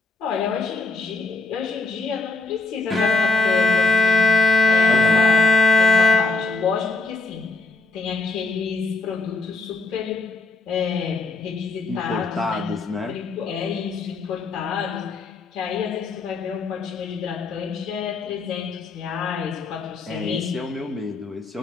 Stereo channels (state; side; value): quieter; right; 3.6 dB